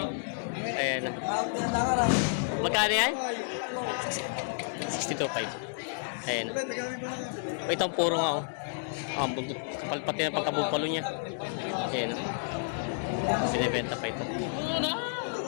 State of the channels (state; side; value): silent; right; digital silence